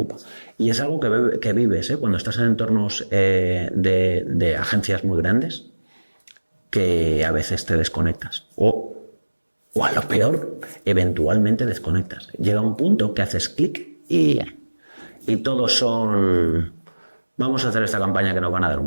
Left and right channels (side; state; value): both; inverted; correlation -1.00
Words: Y es algo que vives cuando estás en entornos de agencias muy grandes, que a veces te desconectas. O a lo peor, eventualmente desconectas. Llega un punto que haces clic y todos son... Vamos a hacer esta campaña que nos van a dar